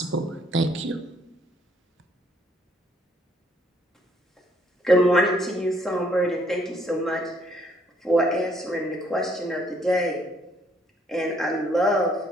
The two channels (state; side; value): normal; both; correlation 0.66